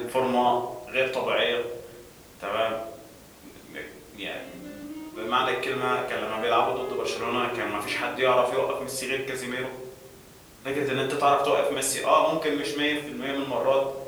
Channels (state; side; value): identical; both; correlation 1.00